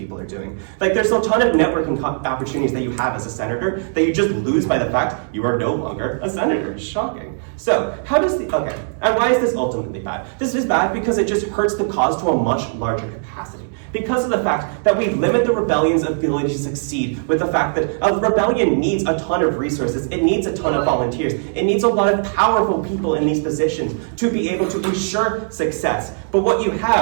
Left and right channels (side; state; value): left; silent; digital silence